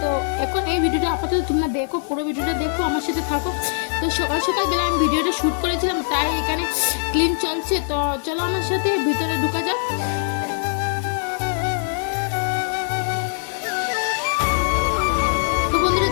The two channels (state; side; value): silent; right; digital silence